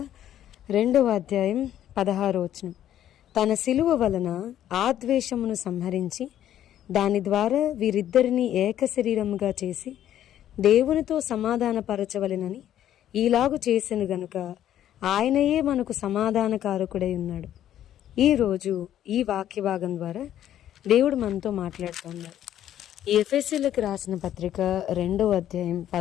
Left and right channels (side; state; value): right; quieter; 11.4 dB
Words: 2వ అధ్యాయం 16వ వచనం. తన సిలువ వలన ఆ ద్వేషమును సంహరించి దాని ద్వారా వీరిద్దరిని ఏక శరీరముగా చేసి దేవునితో సమాధానపరచవలెనని ఈలాగు చేసెను గనుక ఆయనయే మనకు సమాధానకారకుడై ఉన్నాడు. ఈరోజు ఈ వాక్య భాగం ద్వారా దేవుడు మనతో మాట్లాడుతున్నాడు. ఈ ఎఫెసీయులకు రాసిన పత్రిక 2వ అధ్యాయం